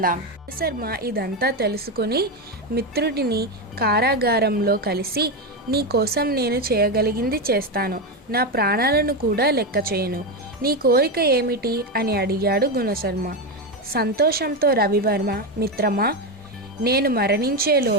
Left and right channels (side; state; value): both; normal; correlation 0.11